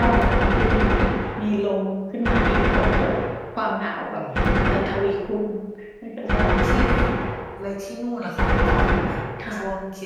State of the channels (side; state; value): both; identical; correlation 1.00